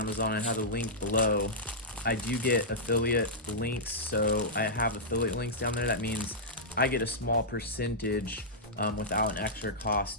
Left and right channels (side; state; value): both; normal; correlation -0.12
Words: I have a link below. I do get affiliate links, so I have affiliate links down there. That means I get a small percentage without an extra